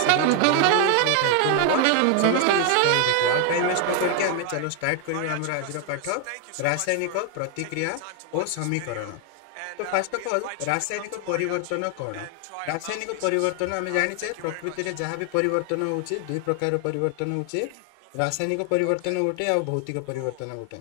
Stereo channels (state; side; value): different; both; correlation 0.00